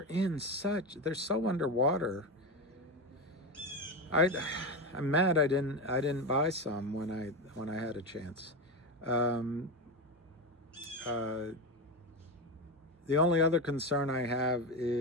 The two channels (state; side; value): normal; both; correlation 0.16